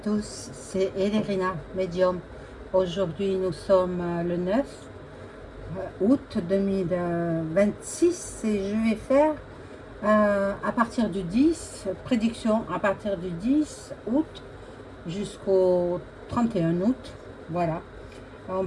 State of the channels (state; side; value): identical; both; correlation 1.00